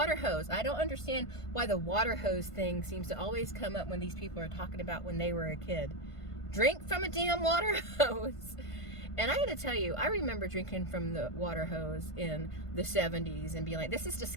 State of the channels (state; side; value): late; right; 1.5 ms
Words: hose. I don't understand why the water hose thing seems to always come up when these people are talking about when they were a kid. Drink from a damn water hose. And I gotta tell you, I remember drinking from the water hose in the 70s and being like, this is